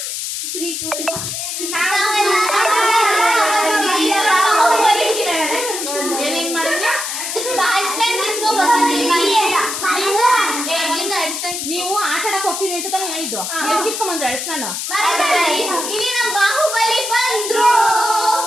ನೀವು ಆಟ ಆಡಕ್ ಹೋಗ್ತೀನಿ ಅಂತ ತಾನೇ ಹೇಳಿದ್ದು. ಕಿತ್ಕೊಂಡ್ಬಂದ್ರೆ ಅಳಿಸ್ ನಾನು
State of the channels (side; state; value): left; noise; hiss, 4 dB below the sound